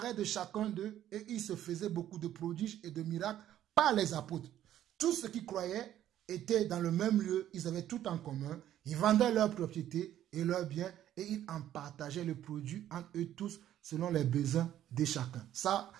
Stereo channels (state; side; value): quieter; left; 11.9 dB